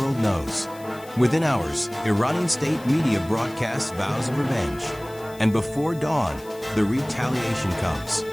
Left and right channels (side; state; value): left; noise; hiss, 22 dB below the sound